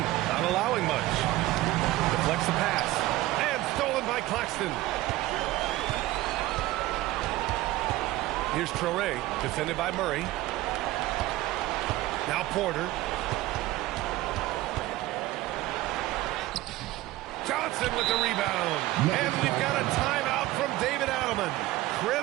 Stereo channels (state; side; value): quieter; left; 17.1 dB